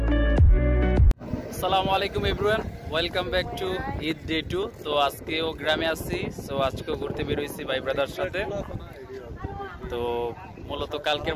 everyone, welcome back to Eid day 2। তো আজকেও গ্রামে আসছি, সো আজকেও ঘুরতে বেরোইছি ভাই ব্রাদার সাথে। তো মূলত কালকের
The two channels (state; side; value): identical; both; correlation 1.00